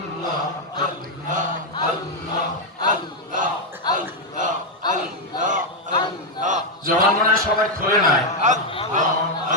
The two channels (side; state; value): both; normal; correlation 0.02